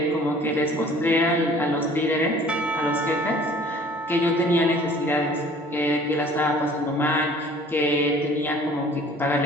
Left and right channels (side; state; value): both; normal; correlation 0.51